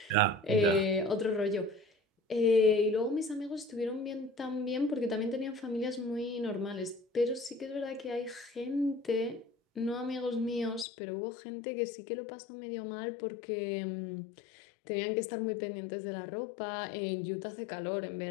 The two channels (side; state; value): right; drops out; at 10.9 s